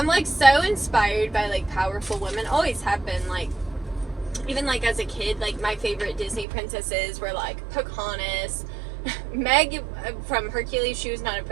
like so inspired by like powerful women. Always have been, like, even like as a kid, like my favorite Disney princesses were like Pocahontas. Meg from Hercules, she was not a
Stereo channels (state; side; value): drops out; left; at 6.5 s